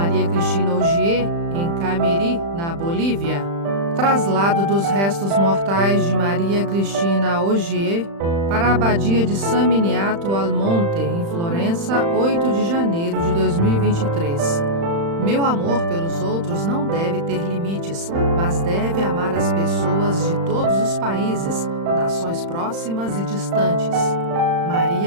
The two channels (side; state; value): left; late; 35 ms